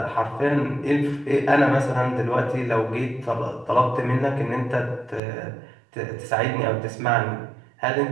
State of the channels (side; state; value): left; drops out; at 5.2 s